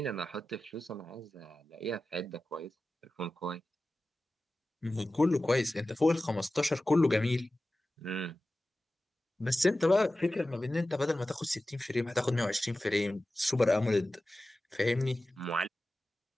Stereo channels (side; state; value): both; normal; correlation 0.95